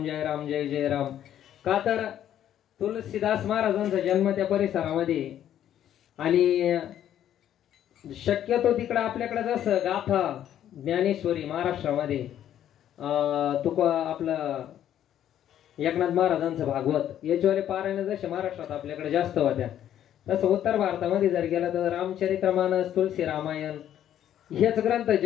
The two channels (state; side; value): quieter; right; 10.9 dB